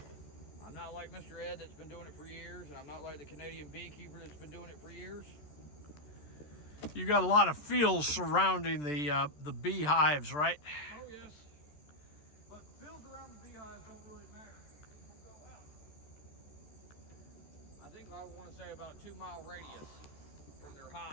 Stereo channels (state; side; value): late; right; 13 ms